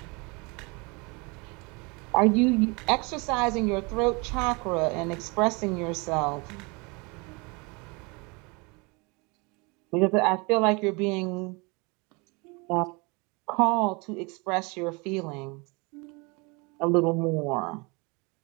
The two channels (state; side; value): quieter; left; 28.6 dB